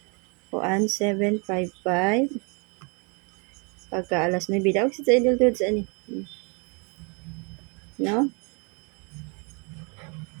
Kuan 755. Pagka alas 9 daw sa idol dudes ani. No?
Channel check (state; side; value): quieter; left; 33.6 dB